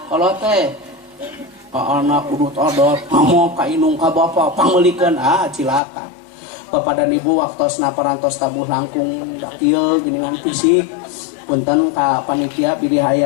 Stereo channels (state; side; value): drops out; right; at 5.8 s